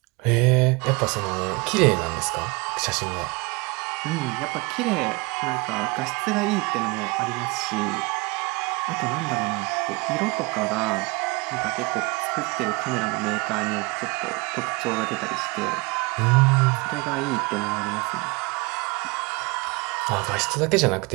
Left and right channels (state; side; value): quieter; left; 26.4 dB